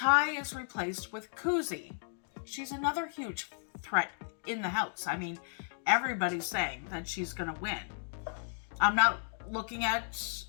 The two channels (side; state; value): right; silent; digital silence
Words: is replaced with Kuzi. She's another huge threat in the house. I mean, everybody's saying that she's going to win. I'm not looking at